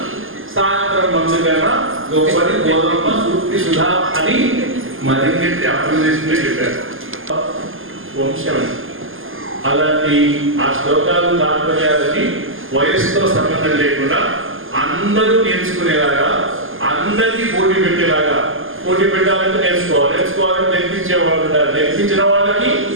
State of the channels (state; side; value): late; left; 0.59 ms